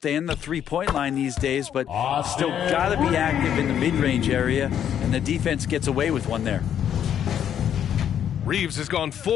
and the three-point line these days, but still got to be active in the mid-range area, and the defense gets away with one there. Reeves has gone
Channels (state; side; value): quieter; right; 9.5 dB